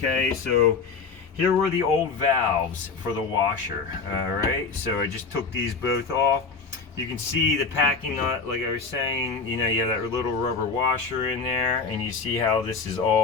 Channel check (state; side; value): quieter; right; 4.7 dB